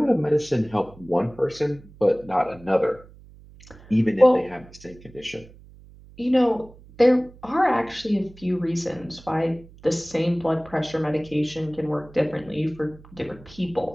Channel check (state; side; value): noise; right; hum, 22 dB below the sound